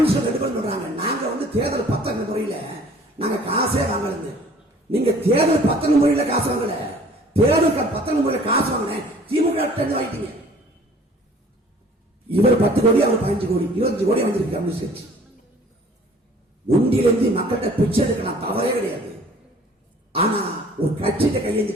ரெண்டு பேரும் சொல்றாங்க, நாங்க வந்து தேர்தல் பத்திர முறையில நாங்க காசே வாங்கல. நீங்க தேர்தல் பத்திர முறையில காசு வாங்கல, தேர்தல் பத்திர முறையில காசு வாங்கின திமுக வாங்கிட்டீங்க. இவர் 10 கோடி, அவர் 15 கோடி, 25 கோடி வந்திருக்கு கம்யூனிஸ்ட் கட்சி. உண்டியிலிருந்து மக்கள்கிட்ட பிச்சை எடுக்கலாம், தவறே கிடையாது. ஆனா ஒரு கட்சியிட்ட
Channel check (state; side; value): normal; both; correlation 0.52